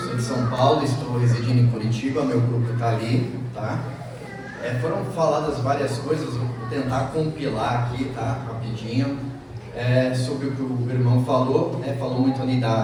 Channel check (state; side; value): identical; both; correlation 1.00